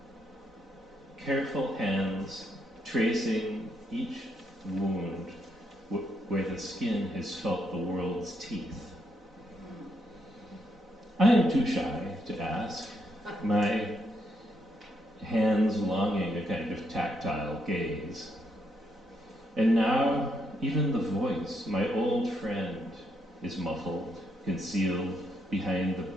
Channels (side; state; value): both; normal; correlation 0.77